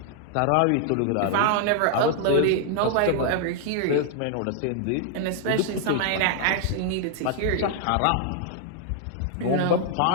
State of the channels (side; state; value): both; different; correlation 0.00